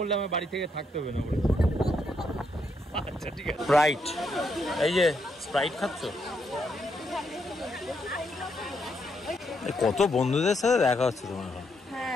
আমার বাড়ি থেকে থাকতে হবে না বলে। আচ্ছা ঠিক আছে। স্প্রাইট, এই যে স্প্রাইট খাচ্ছ? কত বন্ধুদের সাথে দেখা হচ্ছে তোমার এখন?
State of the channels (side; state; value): both; normal; correlation 0.77